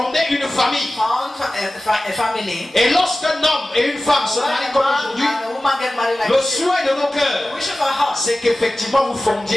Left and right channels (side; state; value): both; normal; correlation 0.96